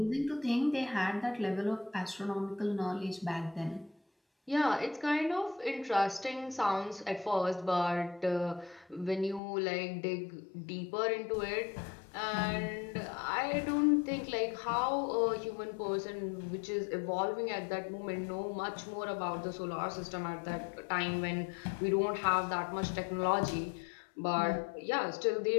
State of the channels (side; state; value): right; drops out; at 9.4 s